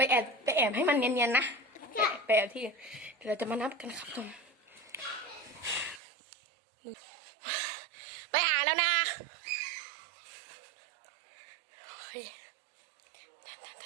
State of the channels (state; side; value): drops out; left; at 6.0 s